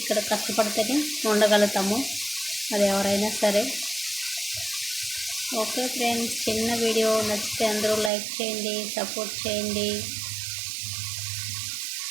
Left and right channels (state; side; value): drops out; left; at 8.1 s